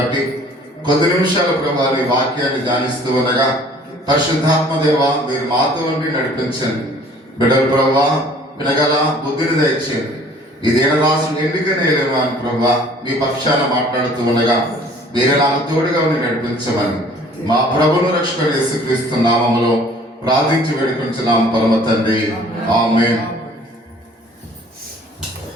కొద్ది నిమిషాల ప్రభువా నీ వాక్యాన్ని ధ్యానిస్తూ ఉండగా పరిశుద్ధాత్మ దేవ మీరు మాతో ఉండి నడిపించండి. బిడ్డలు ప్రభువా వినగల బుద్ధిని దయచేయండి. ఇదేనా రాసిన ఎన్నికనేలేమో అని ప్రభువా మీ పక్షాన మాట్లాడుతూ ఉండగా మీరే నాకు తోడుగా ఉండి నడిపించమని మా ప్రభువును రక్షకుడు యేసుక్రీస్తు నామములో ప్రార్థించి వేడుకొంచున్నాం పరమ తండ్రి, ఆమేన్.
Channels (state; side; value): normal; both; correlation 0.53